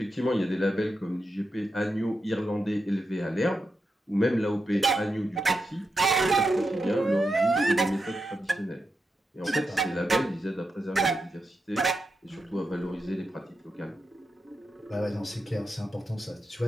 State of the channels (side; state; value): both; normal; correlation 0.87